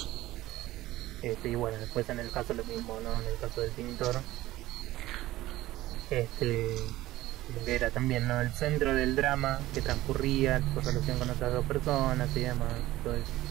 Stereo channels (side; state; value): left; quieter; 16.5 dB